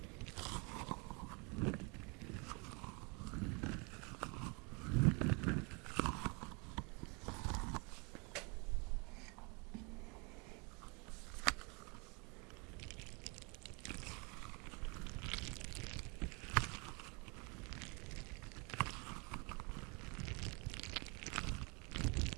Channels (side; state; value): left; quieter; 31.6 dB